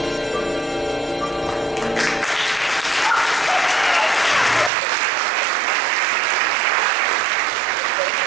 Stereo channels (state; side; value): drops out; left; at 4.7 s